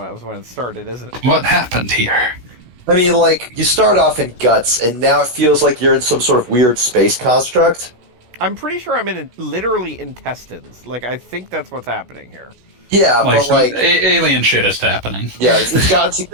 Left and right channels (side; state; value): left; late; 16 ms